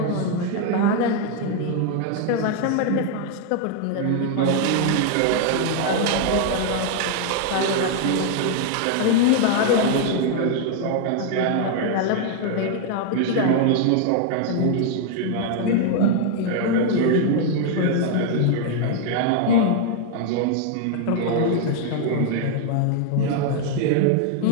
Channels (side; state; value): both; different; correlation 0.00